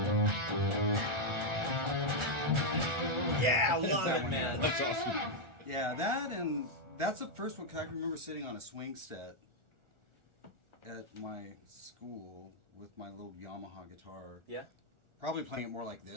Yeah, I love that it, one, man. That's awesome. Yeah, that and that's the first one because I can remember sitting on a swing set at my school with my little Yamaha guitar. Yeah. Probably playing it more like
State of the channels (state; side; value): late; left; 1.4 ms